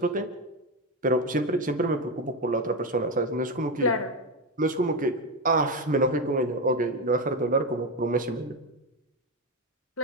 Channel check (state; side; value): normal; both; correlation 0.13